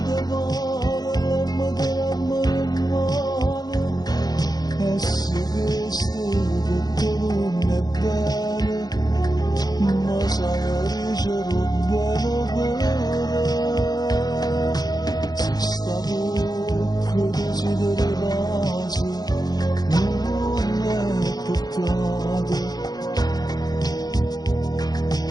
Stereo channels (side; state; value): right; late; 0.19 ms